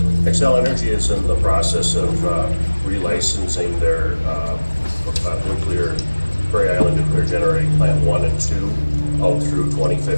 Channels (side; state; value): both; inverted; correlation -1.00